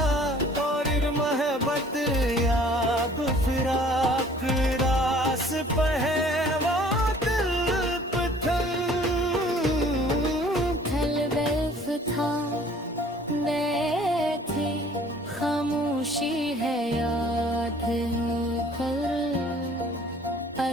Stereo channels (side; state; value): both; normal; correlation 0.53